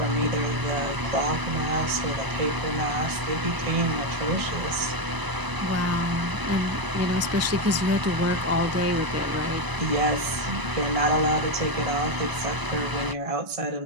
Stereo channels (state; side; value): late; left; 1.0 ms